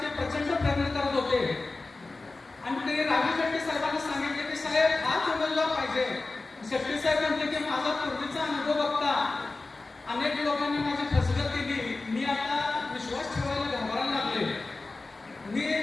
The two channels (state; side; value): quieter; right; 3.4 dB